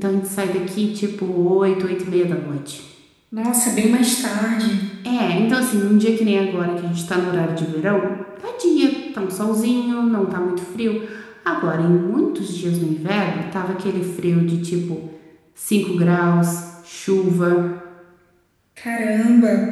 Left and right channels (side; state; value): both; identical; correlation 1.00